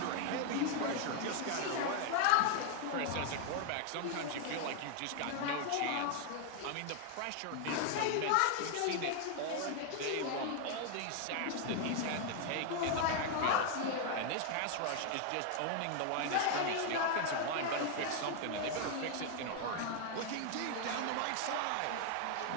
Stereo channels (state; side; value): different; both; correlation 0.00